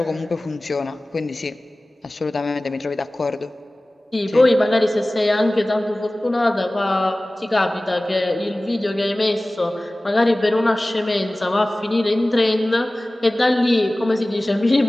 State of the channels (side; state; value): both; normal; correlation 0.98